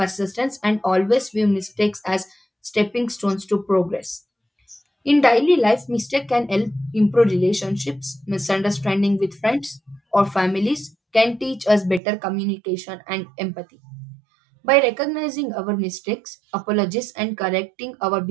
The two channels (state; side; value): drops out; left; at 12.0 s